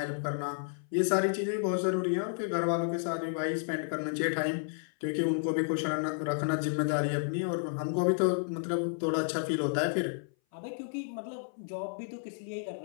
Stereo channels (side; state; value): right; silent; 57 dB below the other